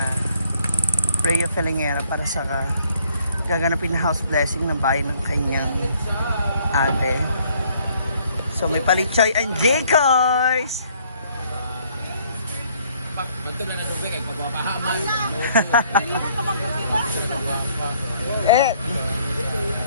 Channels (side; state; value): both; inverted; correlation -0.64